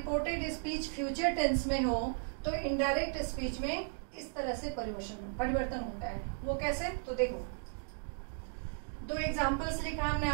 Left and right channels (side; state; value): left; silent; digital silence